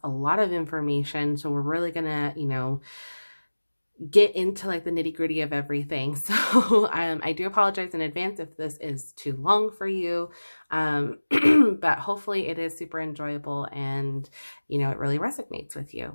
a lot of information. So we're really going to, get into like the nitty-gritty of everything. So I do apologize in advance if this is too long for you. But hopefully it is super enjoyable and, it really resonates with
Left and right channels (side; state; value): both; inverted; correlation -1.00